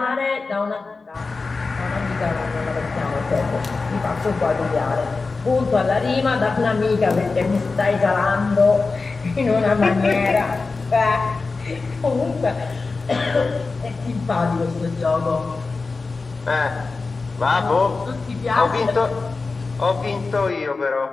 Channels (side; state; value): right; quieter; 4.0 dB